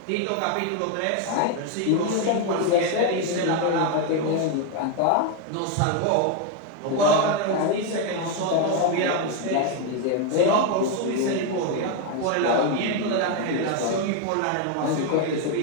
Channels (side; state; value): both; different; correlation 0.01